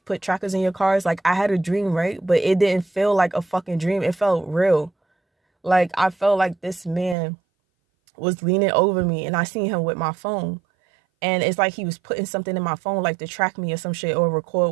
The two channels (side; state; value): left; drops out; at 7.2 s